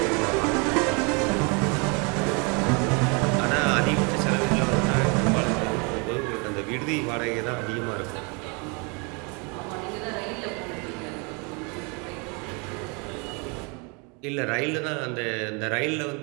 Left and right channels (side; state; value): left; quieter; 32.2 dB